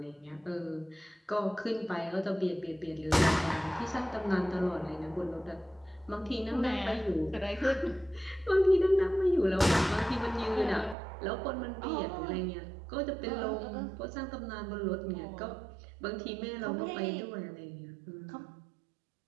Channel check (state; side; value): drops out; left; at 11.0 s